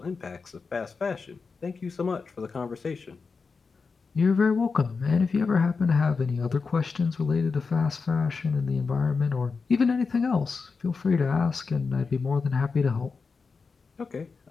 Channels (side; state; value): right; quieter; 4.8 dB